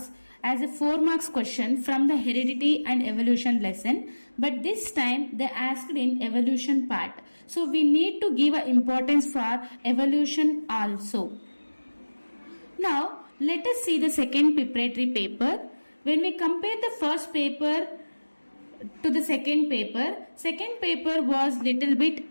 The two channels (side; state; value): both; inverted; correlation -1.00